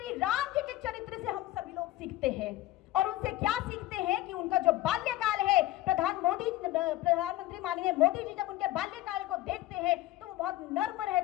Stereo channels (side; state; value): right; quieter; 16.0 dB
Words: राम जी के चरित्र से हम सभी लोग सीखते हैं, और उनसे क्या सीखते हैं कि उनका जो बाल्यकाल है, प्रधानमंत्री माननीय मोदी जी जब उनके बाल्यकाल को देखते हैं तो वो बहुत नर्म